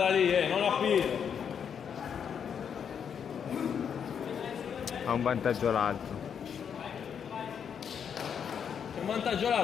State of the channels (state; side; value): quieter; right; 7.6 dB